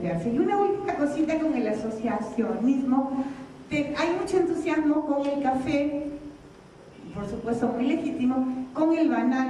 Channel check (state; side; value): identical; both; correlation 1.00